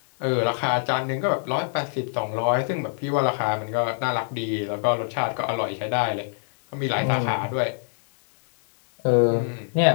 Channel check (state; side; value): silent; right; digital silence